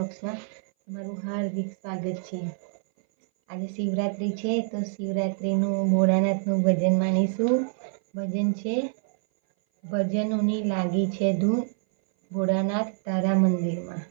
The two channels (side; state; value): left; silent; 58 dB below the other